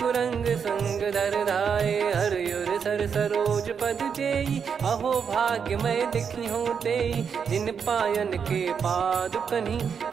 संग धर धाये हरियुर सर सरोज पद जेई अहो भाग्य मैं दिखी हूँ तेई जिन पायन के पाद कन्ही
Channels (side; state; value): left; quieter; 6.7 dB